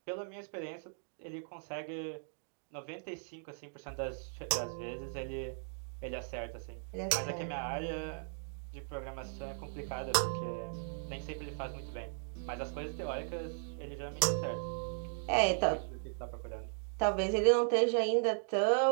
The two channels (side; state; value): left; silent; digital silence